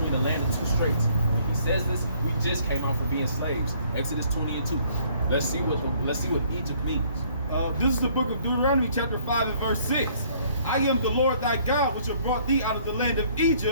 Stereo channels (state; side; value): inverted; both; correlation -0.61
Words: the land and 2 straits. When he says this, we just came out from being slaves. Exodus 20 and 2. Let's see what Egypt means. This is the book of Deuteronomy chapter 5 and verse 6. I am the Lord thy God, which have brought thee out of the land of